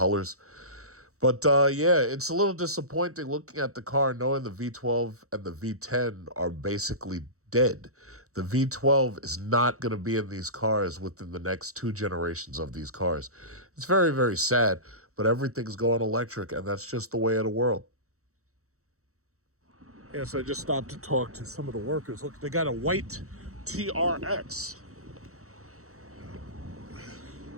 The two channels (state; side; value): late; left; 0.64 ms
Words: But yeah, it's a little disappointing looking at the car knowing the V12 and the V10 are basically dead. The V12 is not going to be in these cars within the next 2 generations of these cars. It's very, very sad, but everything's going electric, and that's just the way of the world. Yeah, so I just stopped to talk to some of the workers. Look, they got a white TRX.